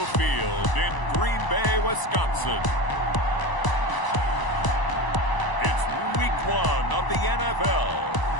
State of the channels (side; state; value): right; late; 1.0 ms